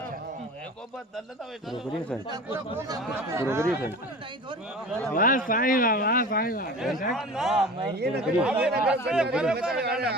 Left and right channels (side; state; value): both; normal; correlation 0.36